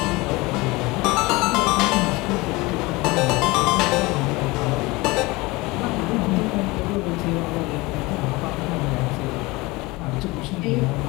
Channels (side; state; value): right; quieter; 22.8 dB